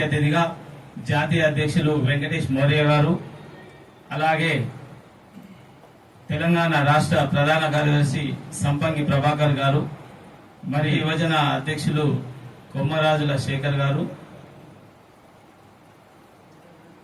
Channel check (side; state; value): both; identical; correlation 1.00